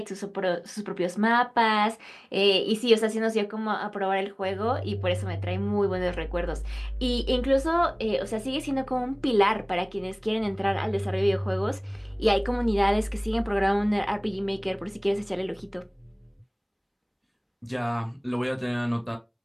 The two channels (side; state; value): both; identical; correlation 1.00